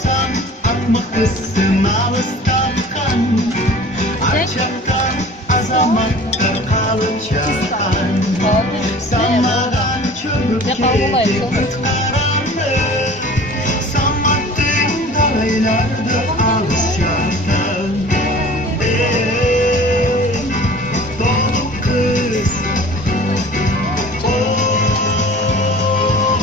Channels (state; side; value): normal; both; correlation 0.44